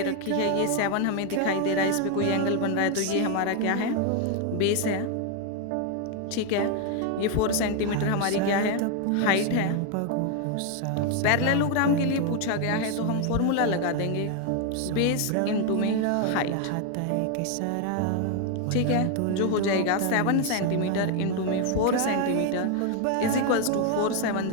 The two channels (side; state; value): both; different; correlation 0.01